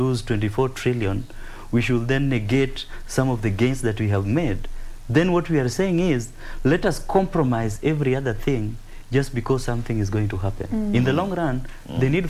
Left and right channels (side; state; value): both; identical; correlation 1.00